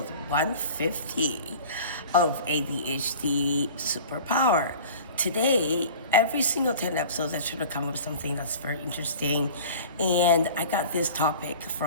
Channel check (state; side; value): inverted; both; correlation -0.41